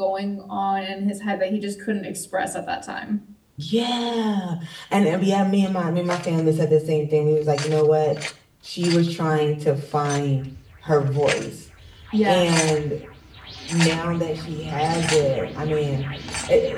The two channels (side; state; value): both; identical; correlation 1.00